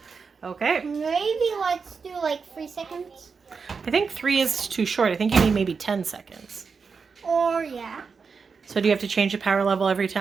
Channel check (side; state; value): left; quieter; 5.3 dB